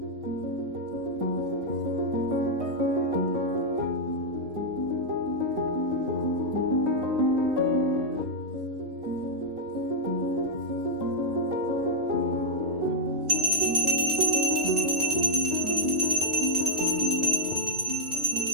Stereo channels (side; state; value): left; late; 3.2 ms